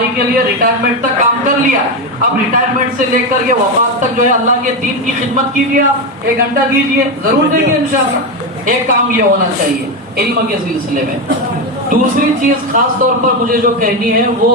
کے لیے ریٹائرمنٹ تک کام کر لیا، اب ریٹائرمنٹ سے لے کر کے وفات تک جو ہے اللہ کے دین کی خدمت کیجیے، آپ 1 گھنٹہ دیجیے، ضرور دیں گے انشاءاللہ۔ ایک کام یہ ہونا چاہیے علم کے سلسلے میں۔ دوسری چیز خاص طور پر مجھے جو کہنی ہے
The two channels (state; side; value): normal; both; correlation 0.12